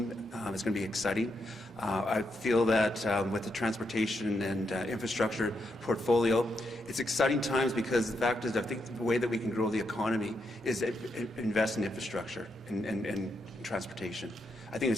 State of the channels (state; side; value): normal; both; correlation 0.81